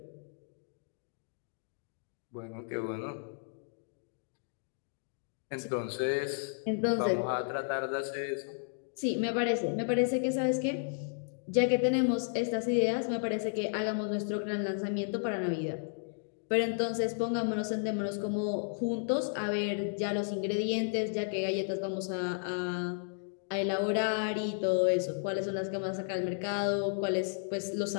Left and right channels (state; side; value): silent; right; digital silence